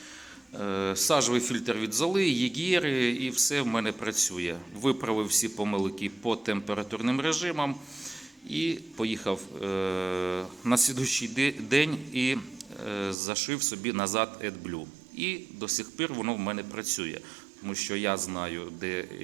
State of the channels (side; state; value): left; drops out; at 13.2 s